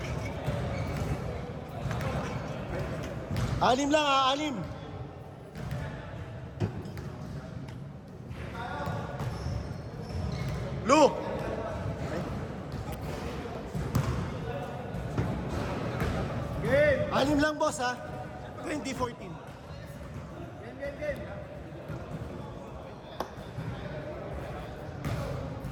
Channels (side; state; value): both; identical; correlation 1.00